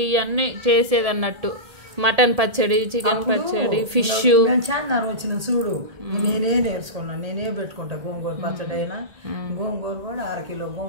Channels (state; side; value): late; left; 1.7 ms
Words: ఇవన్నీ చేసేది అన్నట్టు. మటన్ పచ్చడి, చికెన్ పచ్చడి, ఫిష్. చాన్నారం వచ్చిన చూడు, నేనే నేర్చుకున్నాను. నేనే పెట్టుకుంటా గోంగూర పచ్చడి అయినా. గోంగూర కూడా 1/2 కిలో